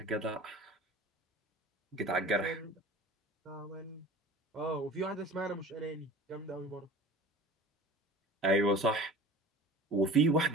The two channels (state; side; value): normal; both; correlation 0.40